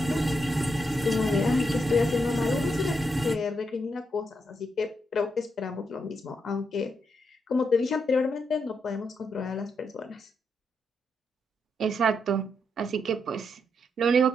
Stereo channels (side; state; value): both; normal; correlation 0.81